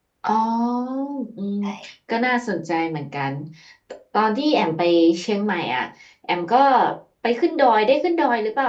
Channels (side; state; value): both; identical; correlation 1.00